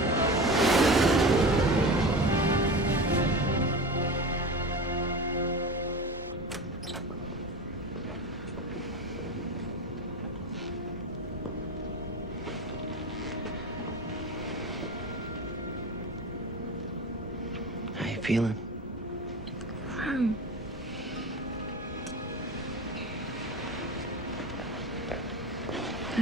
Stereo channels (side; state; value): both; normal; correlation 0.29